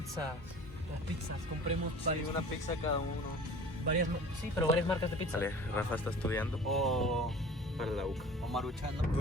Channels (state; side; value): normal; both; correlation 0.43